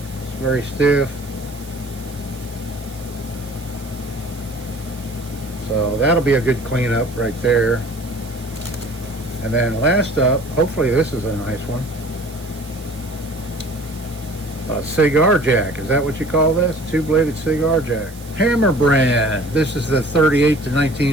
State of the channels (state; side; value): noise; right; hiss, 20 dB below the sound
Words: It's very stiff. So that'll be a good cleanup right there. And then last up, hopefully this is a nice one. A cigar jack, is that what you call this? Two-bladed cigar jack. Hammer brand. This is the 38 to